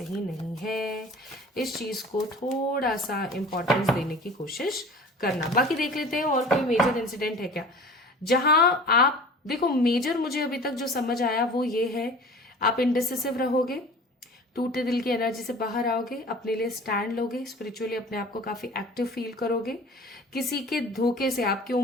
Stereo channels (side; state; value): both; normal; correlation 0.42